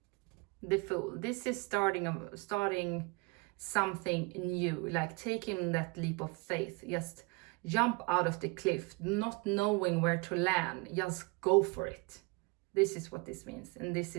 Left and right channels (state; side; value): quieter; left; 27.7 dB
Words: the Fool, this is starting something new, like taking that leap of faith. Just jump out of the cliff, not knowing where to land, just go for it. This is what this means, and this